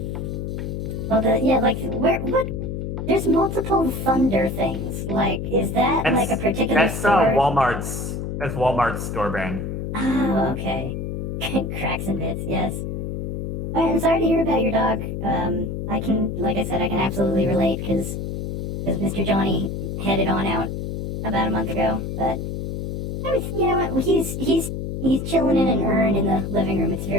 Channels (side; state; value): left; noise; hum, 4 dB below the sound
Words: Well, what? There's multiple Thunder things. Like, is that like a particular That's store? Walmart's store brand. Oh, okay. Cracks and bits, yes. Alright, I'm sorry to hear about your dog. Like I said, I can absolutely relate because Mr. Johnny headed on out about a month ago. But you know what? He's He's chilling in an urn in the living room. It's